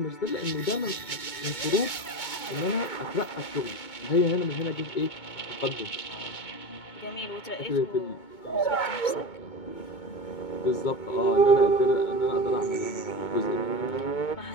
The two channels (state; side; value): late; right; 2.2 ms